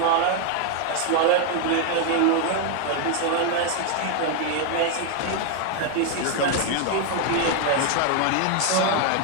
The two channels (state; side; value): different; both; correlation 0.01